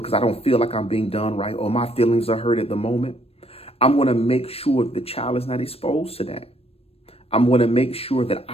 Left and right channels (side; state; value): right; late; 0.28 ms